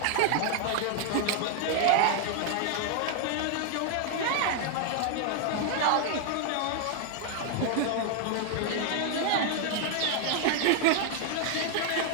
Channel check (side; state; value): both; different; correlation 0.00